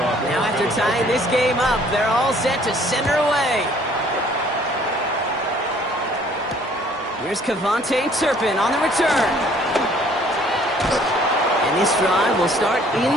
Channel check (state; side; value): normal; both; correlation 0.58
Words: Now after tying this game up, they're all set to send her away. Here's Kevontae Turpin on the return. And this drive will start